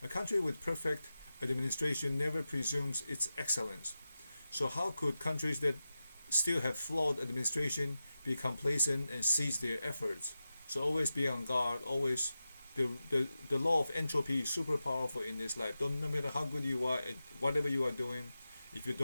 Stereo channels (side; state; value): both; inverted; correlation -0.93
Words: a country with perfect administration never presumes its excellence. So how could countries that still have flawed administration be complacent and cease their efforts? So always be on guard, always. The law of entropy is super powerful in this life. No matter how good you are at whatever you are doing, if you